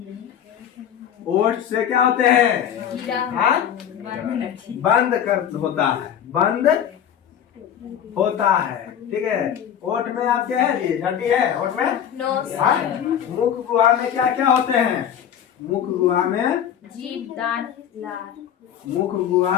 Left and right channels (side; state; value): right; quieter; 9.3 dB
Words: ओठ से क्या होते हैं, बंद होता है, ठीक है। ओठ में आप क्या है, ये हड्डी है ओठ में। मुख गुहा में क्या क्या होते हैं, मुख गुहा में जीभ, दांत, लार। मुख